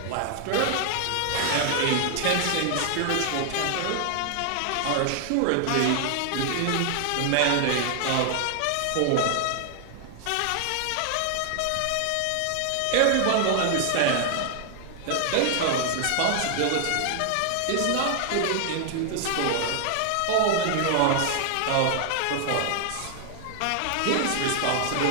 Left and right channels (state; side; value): different; both; correlation 0.00